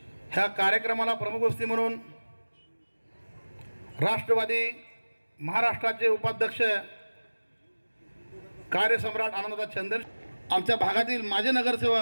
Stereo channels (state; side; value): inverted; both; correlation -1.00